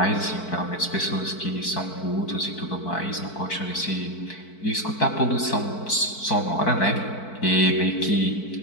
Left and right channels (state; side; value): late; right; 4.5 ms